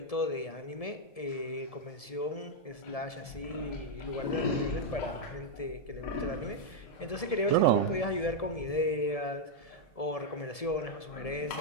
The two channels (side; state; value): right; late; 1.7 ms